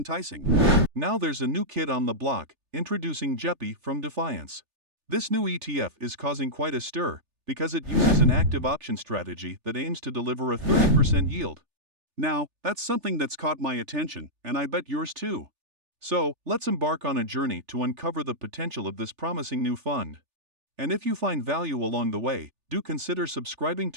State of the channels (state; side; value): late; left; 3.4 ms